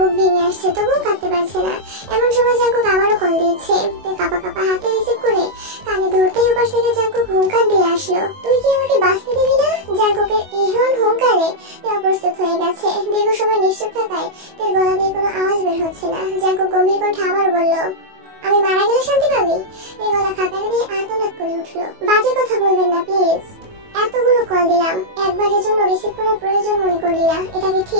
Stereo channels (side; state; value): left; late; 22 ms